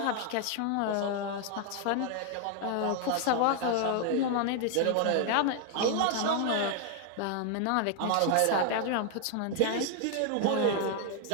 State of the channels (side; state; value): both; different; correlation 0.00